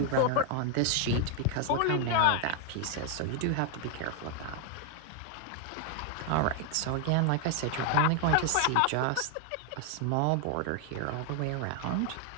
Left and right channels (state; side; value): different; both; correlation 0.01